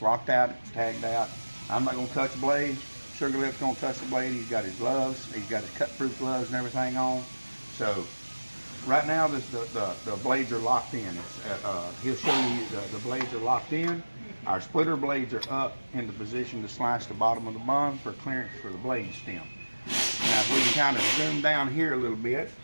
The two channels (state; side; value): inverted; both; correlation -1.00